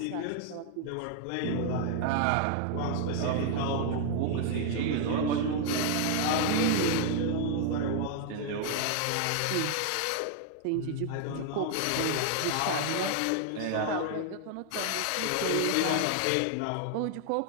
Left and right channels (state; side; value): different; both; correlation 0.00